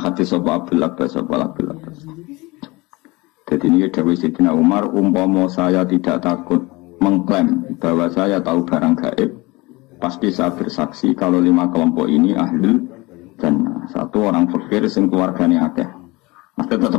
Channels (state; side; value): quieter; right; 23.3 dB